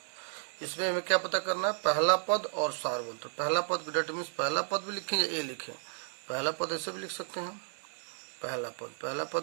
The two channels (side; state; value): left; silent; digital silence